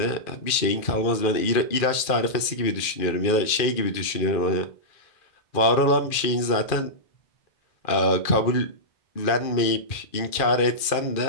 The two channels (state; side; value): late; right; 2.4 ms